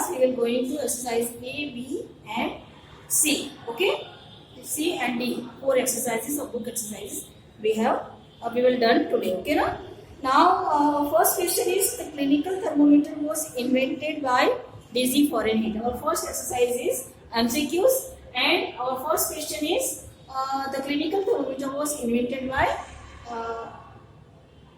we will going to exercise A, B, and C. Okay, C and D, 4 exercises of book exercises we will done today. Okay, now first question is the clinical thermometer was invented by DG Fahrenheit. Our first exercise is MCQs, and our first question is the clinical thermometer was invented by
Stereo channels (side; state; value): both; identical; correlation 1.00